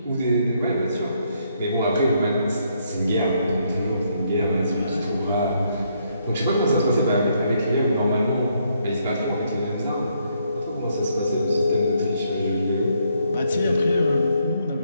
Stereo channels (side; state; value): both; inverted; correlation -0.73